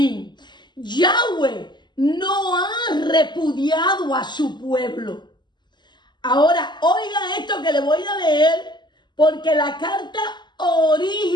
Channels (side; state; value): right; late; 0.21 ms